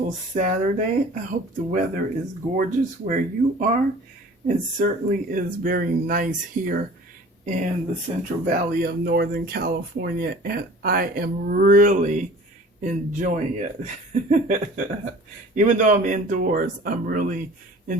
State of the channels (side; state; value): both; normal; correlation 0.45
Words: Saturday? I hope the weather is gorgeous where you are. It certainly is very nice here in the Central Valley of Northern California, and I am really enjoying it. Even though I'm indoors, I'm really